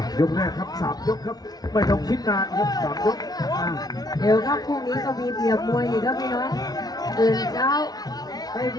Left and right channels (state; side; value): late; right; 0.19 ms